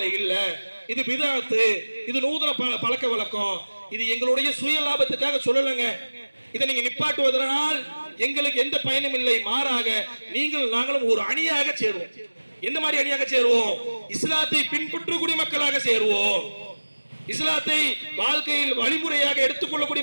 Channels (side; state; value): both; inverted; correlation -1.00